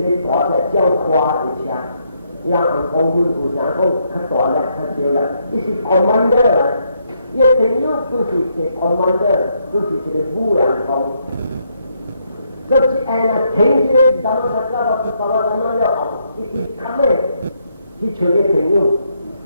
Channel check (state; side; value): inverted; both; correlation -0.75